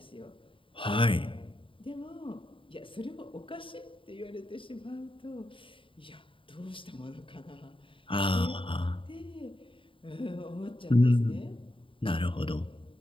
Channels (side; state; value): right; late; 0.25 ms